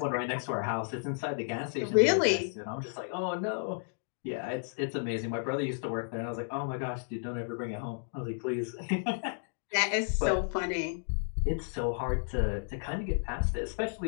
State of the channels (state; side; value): silent; right; digital silence